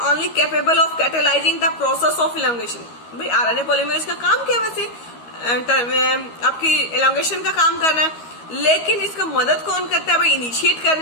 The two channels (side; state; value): right; late; 13 ms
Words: only capable of catalyzing the process of elongation. भाई RNA polymerase का काम क्या वैसे, आपकी elongation का काम करना है, लेकिन इसका मदद कौन करता है भाई इनिशिएट